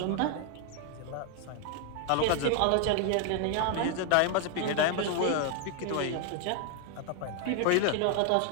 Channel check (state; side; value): different; both; correlation 0.00